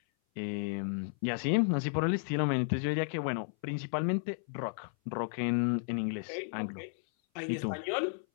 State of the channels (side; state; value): right; silent; 56 dB below the other